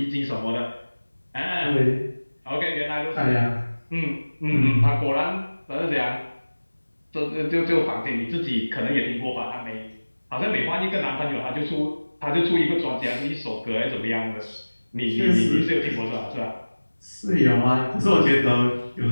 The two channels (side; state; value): both; inverted; correlation -1.00